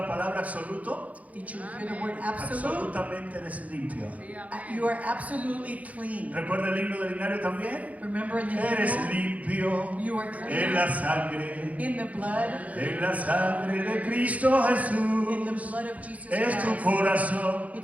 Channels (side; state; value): left; late; 0.070 ms